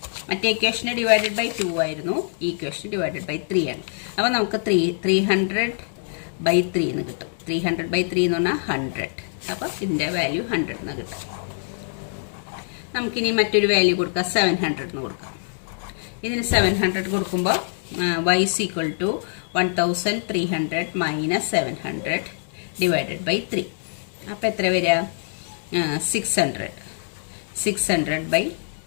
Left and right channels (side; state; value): right; silent; digital silence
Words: മറ്റേ ഇക്വേഷന് ഡിവൈഡഡ് ബൈ 2 ആയിരുന്നു, ഈ ഇക്വേഷൻ ഡിവൈഡഡ് ബൈ 3 ആണ്. അപ്പോൾ നമുക്ക് 300 ബൈ 3 എന്ന് കിട്ടും. 300 ബൈ 3 എന്ന് പറഞ്ഞാൽ 100. അപ്പോൾ ഇതിൻ്റെ വാല്യൂ 100 എന്ന് കിട്ടും. നമുക്കിനി മറ്റൊരു വാല്യൂ കൊടുക്കാം, 700 എന്ന് കൊടുക്കാം. ഇതിന് 700 കൊടുക്കുമ്പോൾ y equal to 1300 minus 700 divided by 3. അപ്പോൾ എത്ര വരിക? 600 ബൈ